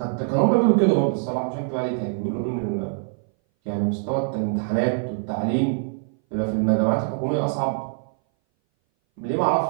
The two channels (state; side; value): silent; left; 60 dB below the other